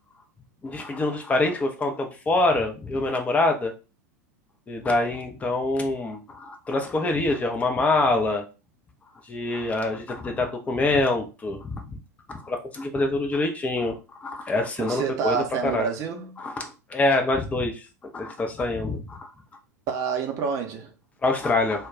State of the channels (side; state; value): both; normal; correlation 0.60